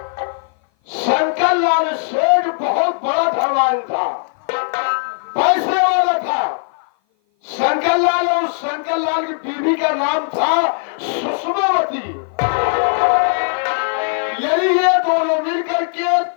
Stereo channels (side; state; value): right; silent; 56 dB below the other